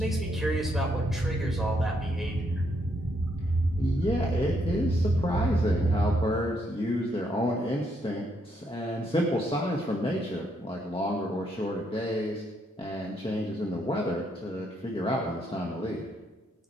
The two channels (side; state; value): both; normal; correlation 0.75